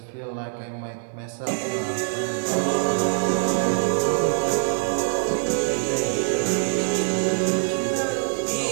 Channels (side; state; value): left; silent; 56 dB below the other